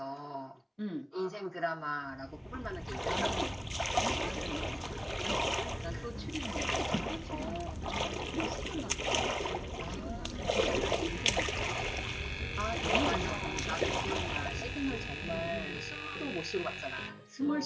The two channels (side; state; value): both; identical; correlation 1.00